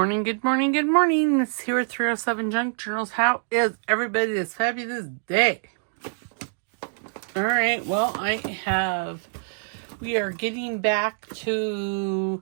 good morning, good morning. It's here at 307 Junk Journals. How is everybody this fabulous day? All right, well, we are getting back to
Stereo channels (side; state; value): left; silent; digital silence